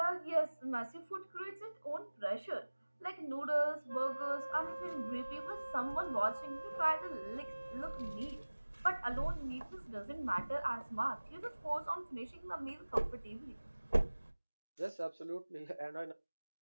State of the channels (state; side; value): inverted; both; correlation -1.00